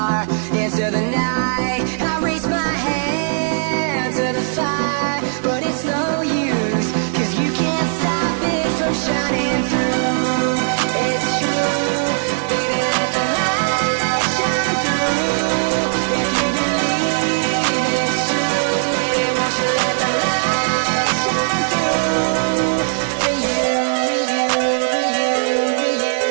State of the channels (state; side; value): silent; left; digital silence